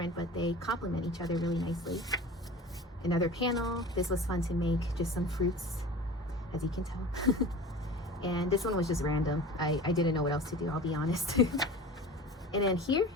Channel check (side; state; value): both; normal; correlation 0.37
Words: but they complement each other really nicely. Another panel. This was fun to make, just some fruits, as you can tell. And this one was just random. I didn't know what else to do, I'll be honest. And then here,